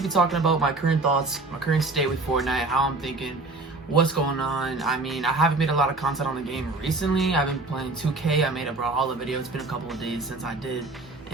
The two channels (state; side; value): quieter; left; 3.3 dB